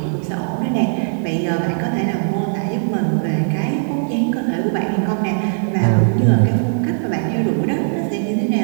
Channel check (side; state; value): left; silent; digital silence